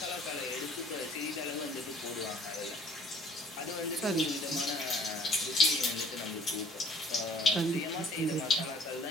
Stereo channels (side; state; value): both; normal; correlation 0.55